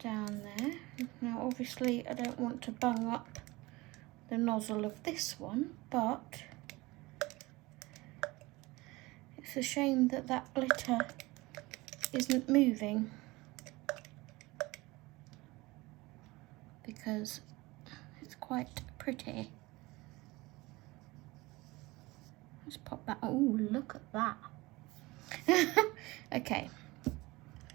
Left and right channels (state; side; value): quieter; left; 21.7 dB